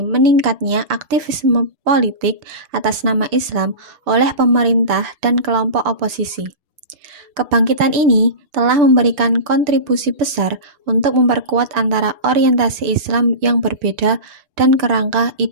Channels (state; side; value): late; left; 6.9 ms